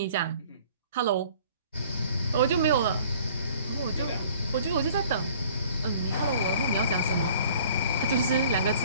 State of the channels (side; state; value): both; inverted; correlation -0.52